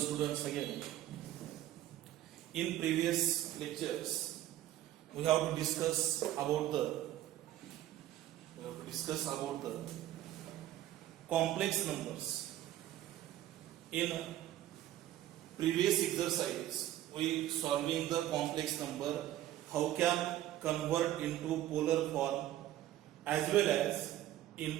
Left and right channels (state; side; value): quieter; left; 13.5 dB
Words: again. In previous lectures, we have to discuss about the complex numbers. In previous exercise, we solving the complex number, how can convert into polar form as well as